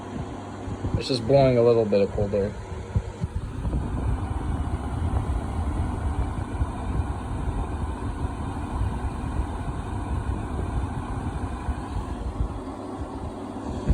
It's just blowing a little bit of cold air.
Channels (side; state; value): both; identical; correlation 1.00